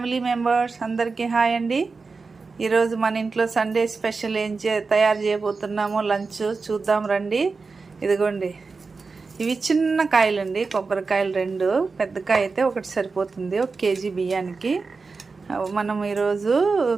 members అందరికీ hi అండి. ఈరోజు మన ఇంట్లో సండే స్పెషల్ తయారు చేయబోతున్నామో లంచ్ చూద్దాం రండి. ఇదిగోండి, ఇవి చిన్న కాయలండి, కొబ్బరికాయలు రెండు. పెద్ద కాయ అయితే ఒకటి సరిపోతుంది 1 కేజీ బియ్యానికి. మనం ఈరోజు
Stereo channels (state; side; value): quieter; left; 4.4 dB